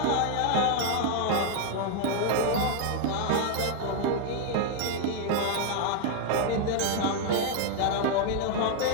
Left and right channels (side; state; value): both; different; correlation 0.00